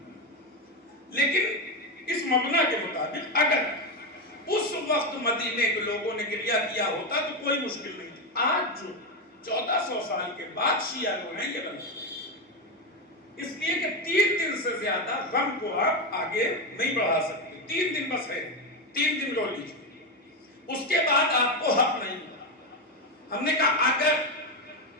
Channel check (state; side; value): normal; both; correlation 0.11